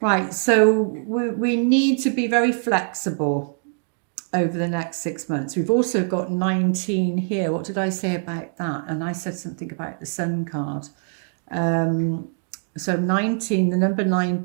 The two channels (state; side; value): silent; left; digital silence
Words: Right, so we need to be very flexible over the next 6 months. We've also got 19 here. What did I say about that? And I said something about the Sun card. So 19, the number